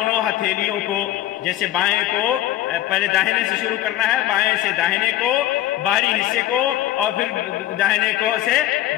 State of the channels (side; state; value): right; quieter; 14.2 dB